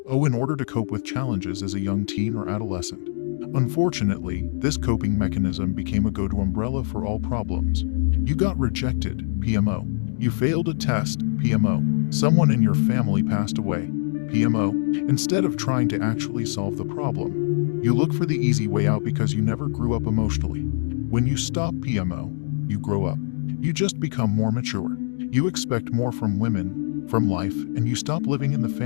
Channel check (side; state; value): right; silent; digital silence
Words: in order to cope with challenges as a young teen or adolescent. Unfortunately, this coping mechanism became a go-to umbrella for all problems. You got rejected, PMO. You failed a test, PMO. Someone in your family passed away, PMO. Instead of trying to actually solve the problem, you look for the easy way out because you never grew up emotionally. When you stop PMO, you grow up. You just become more mature. You expect more from women, from life, and you stop living in the